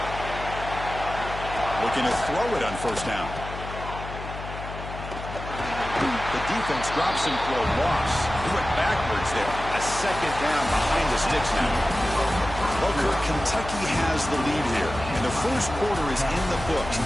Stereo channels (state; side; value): noise; left; hum, 10 dB below the sound